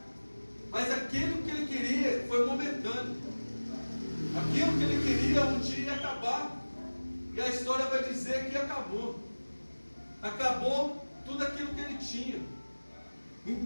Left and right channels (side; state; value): both; inverted; correlation -1.00